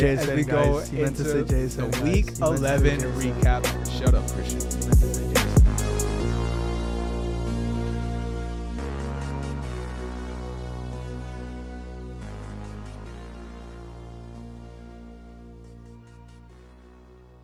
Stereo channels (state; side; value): identical; both; correlation 1.00